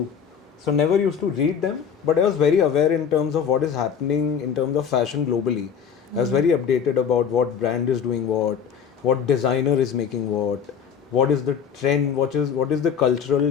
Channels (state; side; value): quieter; right; 7.4 dB